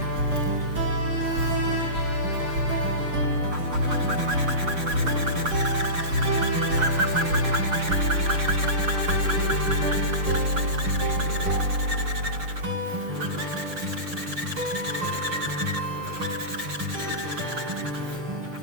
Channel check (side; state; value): left; late; 6.7 ms